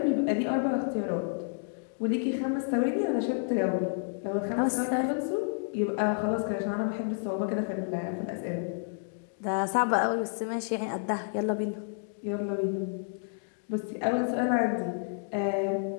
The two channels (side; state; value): right; silent; digital silence